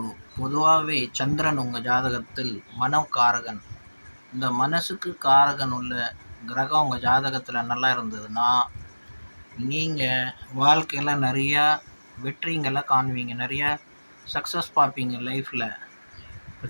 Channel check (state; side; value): inverted; both; correlation -1.00